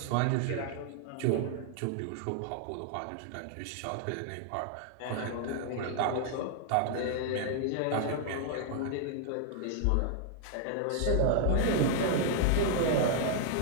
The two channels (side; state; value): both; different; correlation 0.00